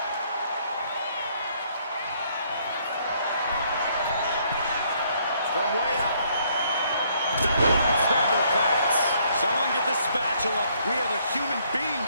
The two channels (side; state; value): both; inverted; correlation -0.67